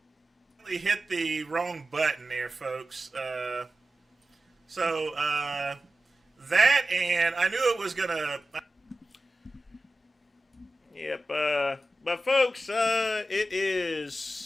Hit the wrong button there, folks. That, and I knew it was gonna. Yep. But folks, it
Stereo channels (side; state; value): both; normal; correlation 0.93